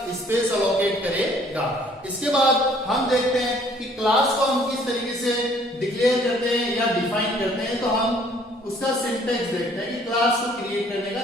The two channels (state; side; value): normal; both; correlation 0.59